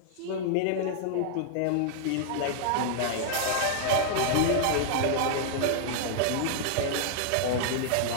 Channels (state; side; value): different; both; correlation -0.01